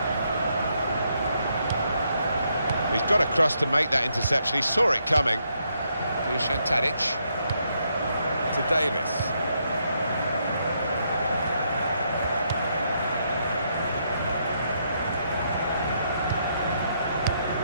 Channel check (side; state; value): both; inverted; correlation -0.76